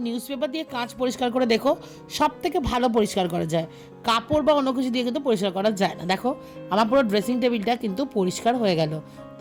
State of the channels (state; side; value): identical; both; correlation 1.00